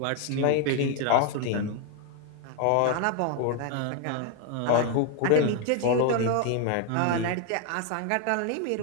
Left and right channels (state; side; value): different; both; correlation 0.00